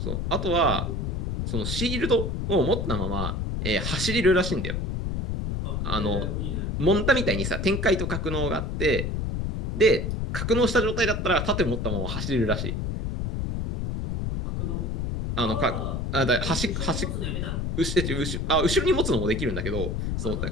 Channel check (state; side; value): noise; left; rumble, 1 dB below the sound